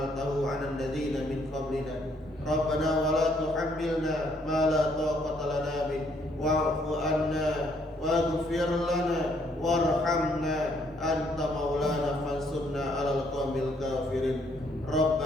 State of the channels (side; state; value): both; normal; correlation 0.68